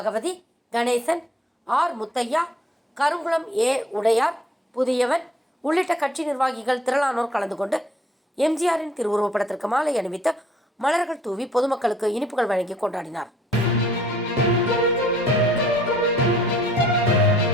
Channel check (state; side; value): normal; both; correlation 0.59